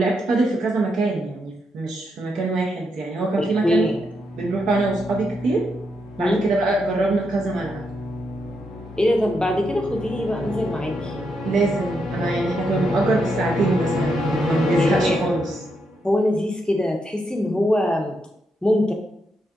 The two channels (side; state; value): both; normal; correlation 0.81